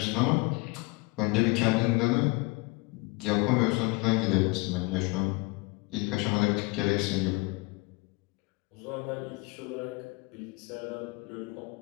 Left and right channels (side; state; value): right; quieter; 25.8 dB